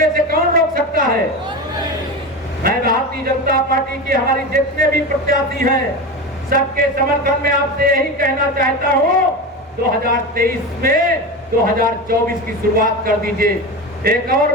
से कौन रोक सकता है? मैं भारतीय जनता पार्टी की हमारी जितने भी प्रत्याशी हैं, सबके समर्थन में आपसे यही कहना चाहता हूं, 2023 में 2024 की शुरुआत कर दीजिए। एक और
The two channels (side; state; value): both; normal; correlation 0.23